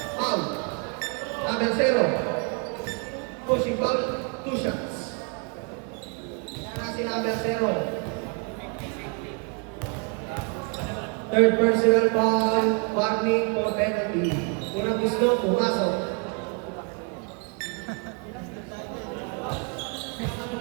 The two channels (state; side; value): quieter; left; 36.4 dB